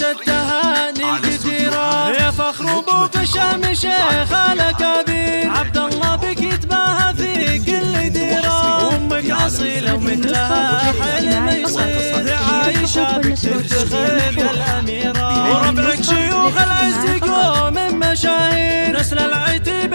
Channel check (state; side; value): inverted; both; correlation -1.00